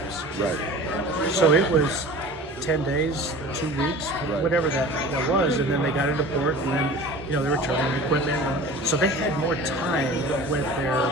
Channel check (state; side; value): normal; both; correlation 0.40